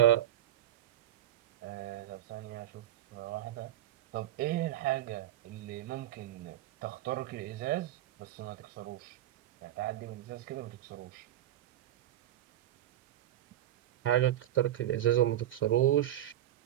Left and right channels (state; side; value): quieter; left; 12.9 dB